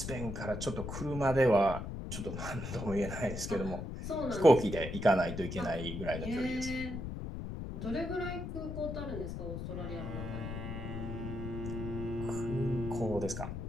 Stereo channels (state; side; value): noise; left; rumble, 6 dB below the sound